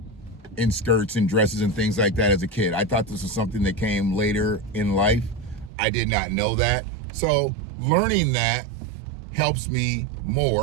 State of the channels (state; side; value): drops out; left; at 5.7 s